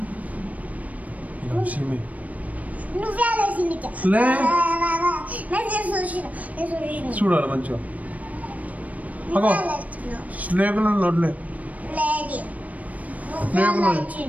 నువ్వే ఆలోచించ చూడాలి మంచిగా. స్నేకులు నోట్లే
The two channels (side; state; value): left; late; 0.071 ms